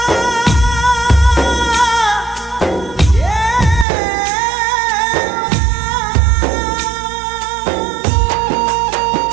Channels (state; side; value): drops out; left; at 3.9 s